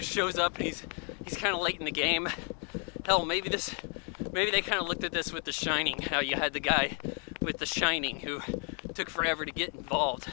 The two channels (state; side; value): quieter; right; 39.4 dB